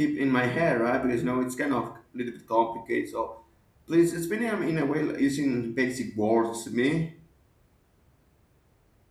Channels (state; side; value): identical; both; correlation 1.00